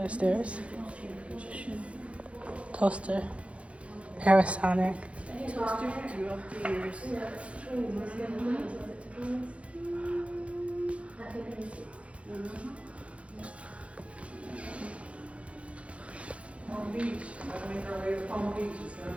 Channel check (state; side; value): late; left; 0.062 ms